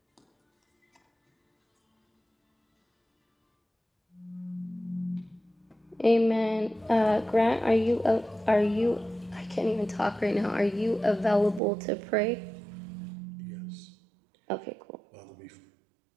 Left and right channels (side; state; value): left; drops out; at 11.6 s